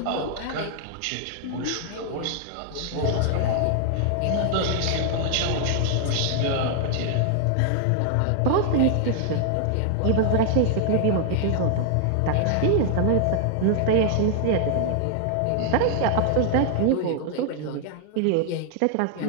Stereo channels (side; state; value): both; different; correlation 0.00